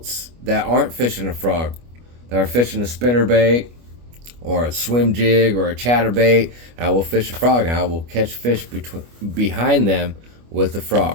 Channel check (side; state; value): left; late; 25 ms